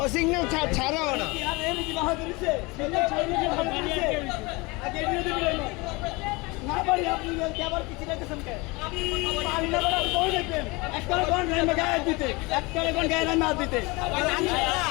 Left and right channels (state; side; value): quieter; right; 25.2 dB